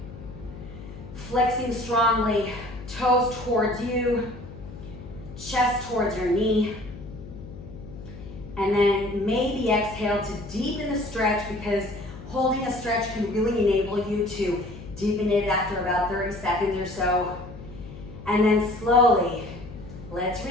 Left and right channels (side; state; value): left; noise; hum, 14 dB below the sound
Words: Flexing strongly, toes towards you, chest towards your knee. And then maybe exhale to deepen the stretch, because holding a stretch can really enable you to deepen it after about 30 seconds or so. And then slowly, let's